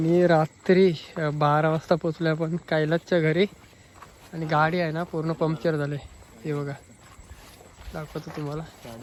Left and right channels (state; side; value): identical; both; correlation 1.00